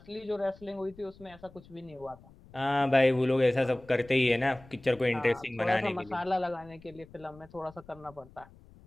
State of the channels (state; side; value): noise; left; rumble, 23 dB below the sound